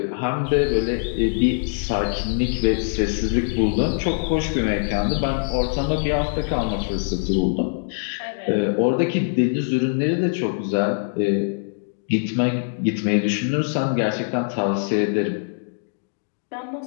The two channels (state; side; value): silent; right; digital silence